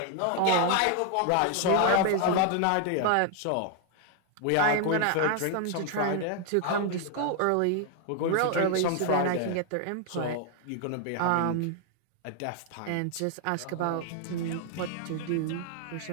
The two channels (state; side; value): different; both; correlation 0.00